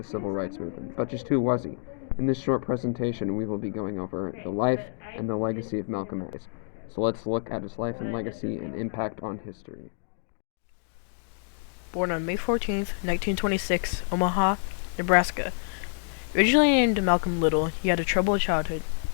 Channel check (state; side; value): silent; right; digital silence